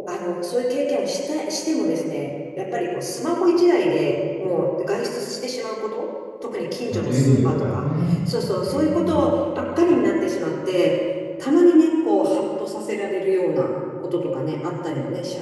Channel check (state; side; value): identical; both; correlation 1.00